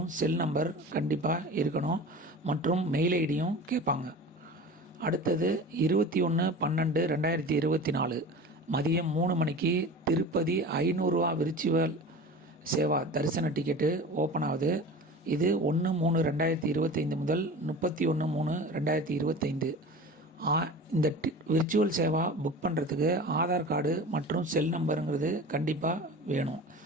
செல் நம்பர் கண்டிப்பாக இருக்கணும் மற்றும் மெயில் ஐடியும் கேட்பாங்க. அடுத்தது 21/12/2024 மதியம் 3 மணிக்கு திருப்பதி 500 ரூபா விர்ச்சுவல் சேவா தரிசன டிக்கெட்டு ஓப்பன் ஆகுது. இது 1/3/2025 முதல் 31/3/2025. இந்த விர்ச்சுவல் சேவா புக் பண்ணுறதுக்கு ஆதார் கார்டு மற்றும் செல் நம்பருங்கிறது கண்டிப்பாக வேணும்.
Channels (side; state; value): both; normal; correlation 0.36